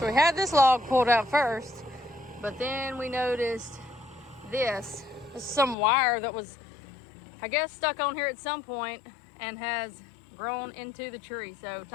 we had this log pulled out first, but then we noticed this. This is some wire that was, I guess, stuck on here at some point and has grown into the tree. So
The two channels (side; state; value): right; drops out; at 5.8 s